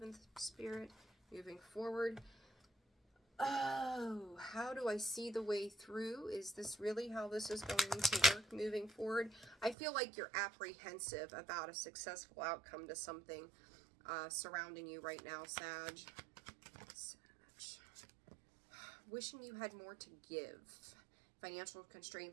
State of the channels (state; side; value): drops out; left; at 9.8 s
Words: Spirit, moving forward. Oh, how do I see the way through? Is this really how this is going to work moving forward? I feel like you're apprehensive about a successful outcome to something surrounding you right now, Sag. Wishing you had more to give. Financial